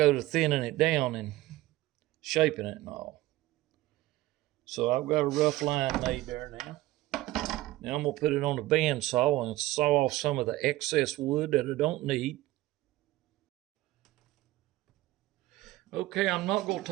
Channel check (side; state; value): left; quieter; 17.3 dB